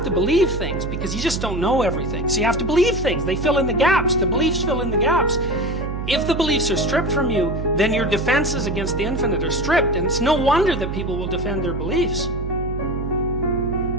to believe things because you just don't know everything. So you have to believe things. They fill in the gaps. The beliefs fill in the gaps. If the beliefs are stripped from you, then your defenses against the infinite are stripped, and it's no wonder that people will defend their beliefs.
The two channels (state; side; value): noise; right; hum, 5 dB below the sound